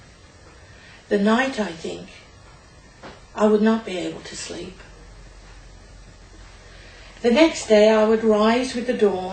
The night, I think, I would not be able to sleep. The next day I would rise with the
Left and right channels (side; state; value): both; identical; correlation 1.00